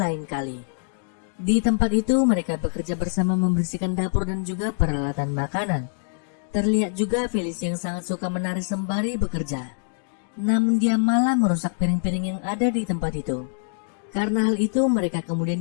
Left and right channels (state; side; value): silent; right; digital silence